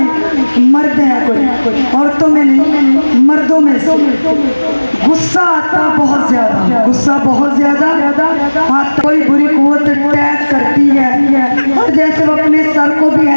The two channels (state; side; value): inverted; both; correlation -1.00